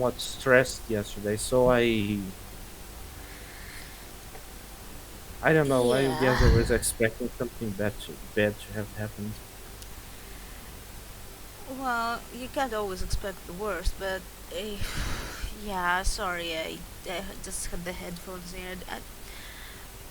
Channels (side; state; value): both; identical; correlation 1.00